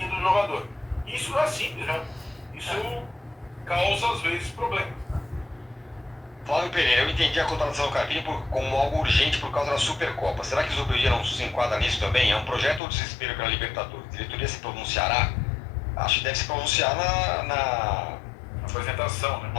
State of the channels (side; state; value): right; drops out; at 12.8 s